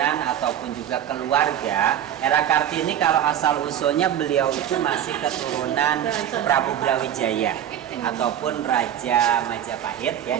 ataupun juga keluarga, R.A. Kartini kalau asal usulnya beliau itu masih keturunan Prabu Brawijaya ataupun Raja Majapahit ya.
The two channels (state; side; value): quieter; left; 10.4 dB